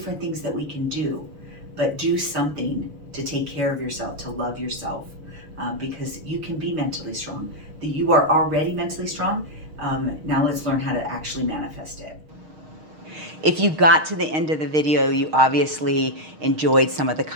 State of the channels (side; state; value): left; late; 6.5 ms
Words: things that we can do, but do something to take care of yourself, to love yourself, because you can be mentally strong. You are already mentally strong. Now let's learn how to actually manifest it. If you got to the end of the video, you obviously enjoyed some of the